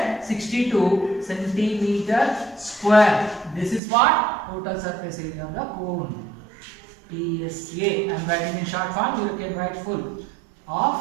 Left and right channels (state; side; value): drops out; left; at 3.8 s